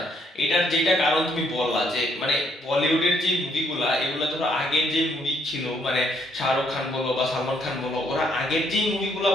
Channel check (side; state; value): both; normal; correlation 0.70